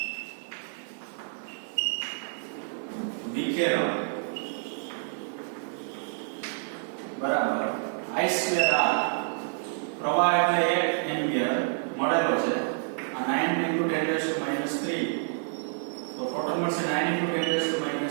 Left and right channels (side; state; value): left; silent; digital silence